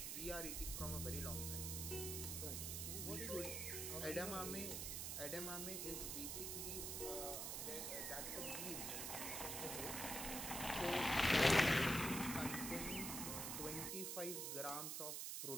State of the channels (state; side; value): noise; right; hiss, 2 dB below the sound